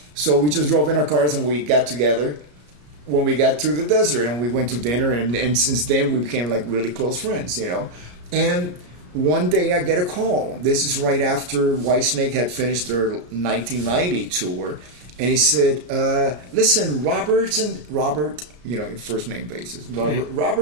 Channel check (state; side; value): late; left; 34 ms